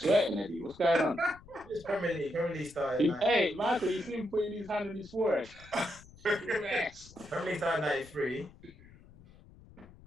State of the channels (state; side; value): noise; left; rumble, 22 dB below the sound